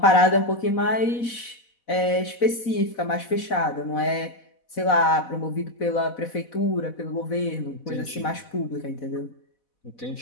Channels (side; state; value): right; late; 4.1 ms